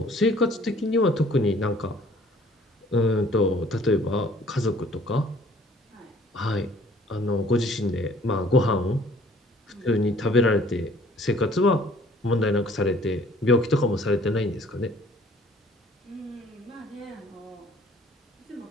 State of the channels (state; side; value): normal; both; correlation 0.56